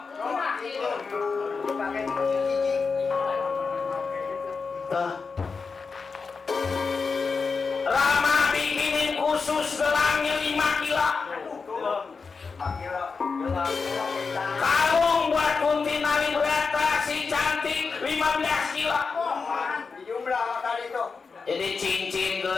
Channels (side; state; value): right; quieter; 4.9 dB